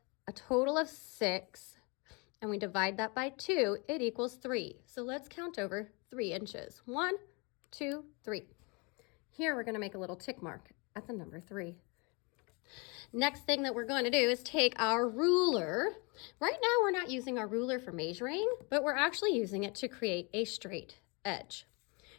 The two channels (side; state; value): right; quieter; 30.3 dB